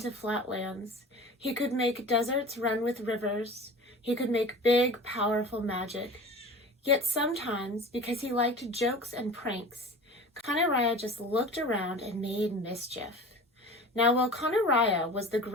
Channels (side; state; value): both; normal; correlation 0.38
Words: flat lands. He could make deserts run with rivers. He could make big, powerful magic. Yet sometimes, because he liked jokes and pranks, Conaraya just looked around and made mischief. Now, while Conaraya was the